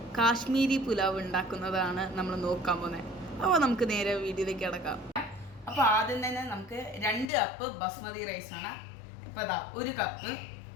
കാശ്മീരി പുലാവ് ഉണ്ടാക്കുന്നതാണ് നമ്മൾ നോക്കാൻ പോകുന്നത്. അപ്പോൾ നമുക്ക് നേരെ വീഡിയോയിലേക്ക് കിടക്കാം. അപ്പോൾ ആദ്യം തന്നെ നമുക്ക് 2 കപ്പ് ബസ്മതി റൈസാണ്. ഇപ്പോൾ അതാ 1 കപ്പ്,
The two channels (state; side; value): drops out; right; at 7.2 s